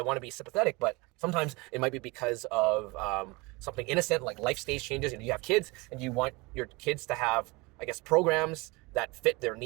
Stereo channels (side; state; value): left; quieter; 25.2 dB